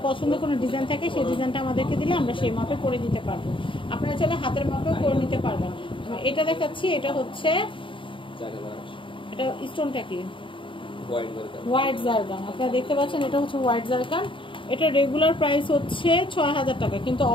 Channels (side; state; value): right; late; 0.25 ms